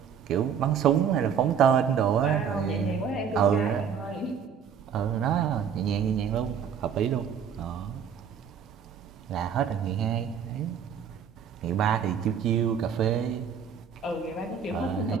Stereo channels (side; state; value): left; quieter; 7.5 dB